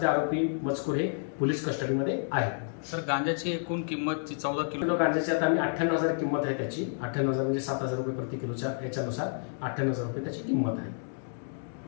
आरोपी मजकूर हे पोलीस कस्टडीमध्ये आहेत। सर गांजाची एकूण किंमत 14 किलो गांजाची आता आम्ही 98,000 किंमत आहे त्याची। 98,000 म्हणजे 7,000 रुपये प्रति किलोच्या याच्यानुसार 98,000 रुपये त्याची किंमत आहे।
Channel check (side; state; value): right; silent; digital silence